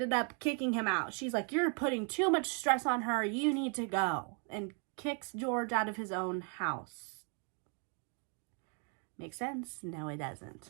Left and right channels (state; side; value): quieter; left; 39.0 dB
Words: up kicking him out. She's like, you're putting too much stress on her. You need to go. And kicks George out of his own house. Makes sense? No, it